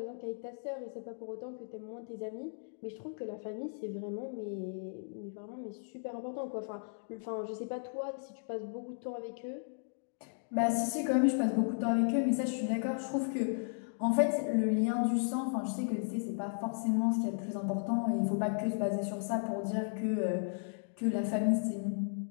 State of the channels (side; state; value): right; silent; digital silence